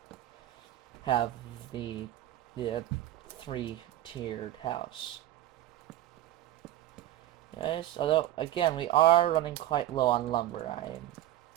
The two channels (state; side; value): quieter; left; 13.8 dB